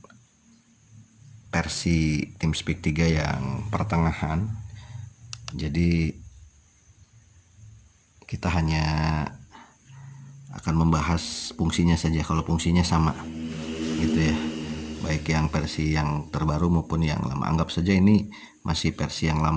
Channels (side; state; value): both; identical; correlation 1.00